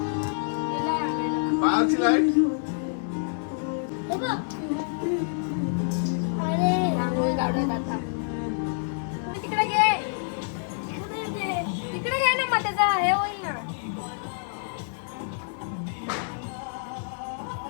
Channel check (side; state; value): right; silent; digital silence